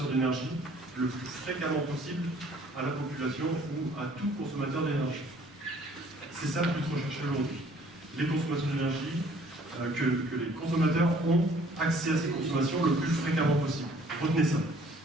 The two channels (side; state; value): both; normal; correlation 0.57